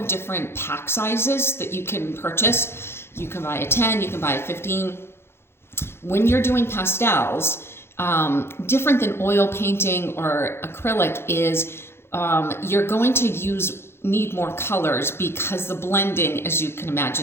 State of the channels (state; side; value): late; right; 0.12 ms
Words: different pack sizes that you can purchase. You can buy a 10, you can buy a 15. When you're doing pastels, different than oil painting or acrylic is you're going to need more colors because the blending, as you can